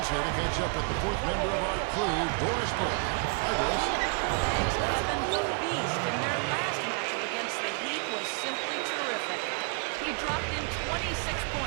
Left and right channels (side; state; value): left; quieter; 36.2 dB